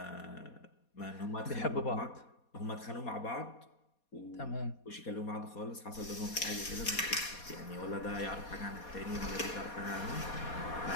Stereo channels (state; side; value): late; right; 4.2 ms